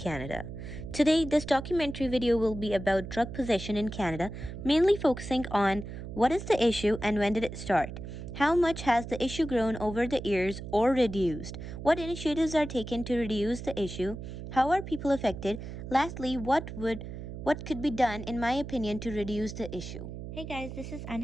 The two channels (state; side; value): noise; right; hum, 9 dB below the sound